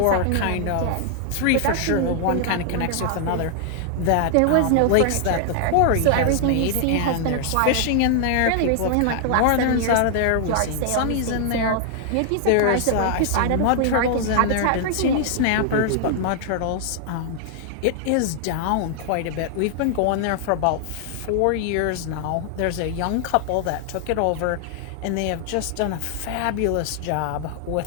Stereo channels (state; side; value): different; both; correlation 0.00